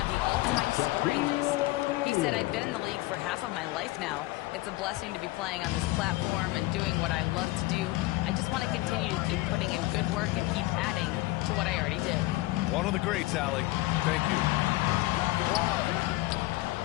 the all-time scoring list. He said, I've been in the league for half of my life now. It's a blessing to be playing on this platform and doing what I love to do. I just want to continue to keep putting in good work and keep adding to what I already did. One of the greats, Allie. Thank you.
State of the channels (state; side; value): quieter; right; 19.7 dB